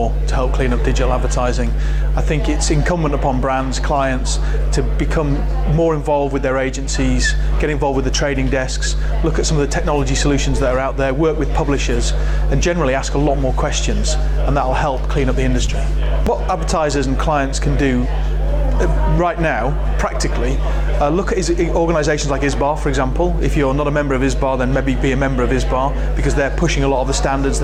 to help clean up digital advertising. I think it's incumbent upon brands, clients, to become more involved with their agencies, get involved with the trading desks, look at some of the technology solutions that are out there, work with publishers, and generally ask a lot more questions, and that'll help clean up the industry. What advertisers and clients can do right now, practically, look at organisations like ISBA, for example. If you're not a member of ISBA, then maybe be a member of ISBA, because they're pushing a lot of the standards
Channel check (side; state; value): both; identical; correlation 1.00